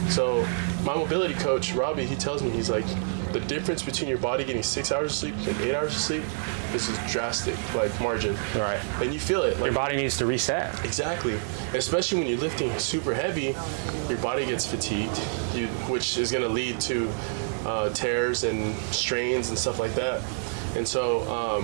So my mobility coach, Robbie, he tells me, he's like, the difference between your body getting 6 hours of sleep and 8 hours of sleep is drastic, like, margin. Right. And you feel it. Like, your body needs to reset. Exactly. Especially when you're lifting super heavy, your body gets fatigued, which is going to lead to tears and strains and stuff like that. And so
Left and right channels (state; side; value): silent; left; digital silence